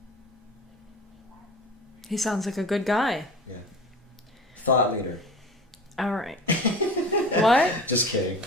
He sounds like a good guy. Yeah. Thought leader. All right. What? Just kidding.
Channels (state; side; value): normal; both; correlation 0.37